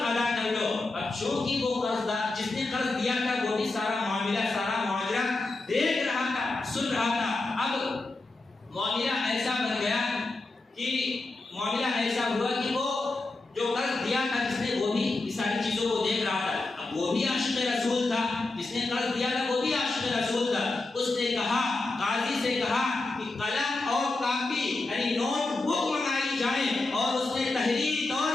ادا کر لو۔ اب چونکہ وہ قرضدار جس نے قرض دیا تھا وہ بھی سارا معاملہ دیکھ رہا تھا، سن رہا تھا۔ اب معاملہ ایسا بن گیا کہ معاملہ ایسا ہوا کہ وہ جو قرض دیا تھا جس نے وہ بھی ساری چیزوں کو دیکھ رہا تھا۔ اب وہ بھی عاشق رسول تھا، جس نے قرض دیا تھا وہ بھی عاشق رسول تھا۔ اس نے کہا، قاضی سے کہا کہ قلم اور کاپی یعنی نوٹ بک منگائی جائے، اور اس نے تحریری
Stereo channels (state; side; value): quieter; right; 3.3 dB